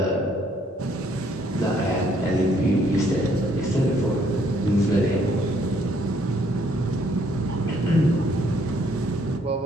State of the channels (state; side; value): normal; both; correlation 0.66